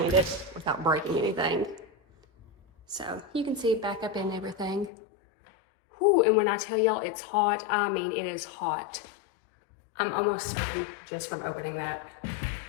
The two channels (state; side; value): drops out; right; at 4.9 s